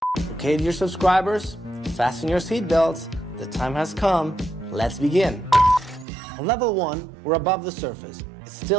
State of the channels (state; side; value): drops out; left; at 6.1 s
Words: Okay, dear subscribers, fasten your seatbelts. The time has come. Let's begin. On level 1, we're above the surface. It's